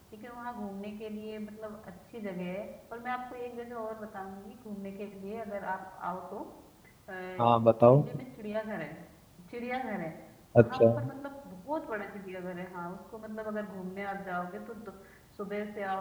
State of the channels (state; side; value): identical; both; correlation 1.00